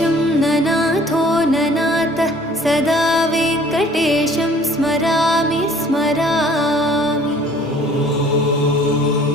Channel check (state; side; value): normal; both; correlation 0.54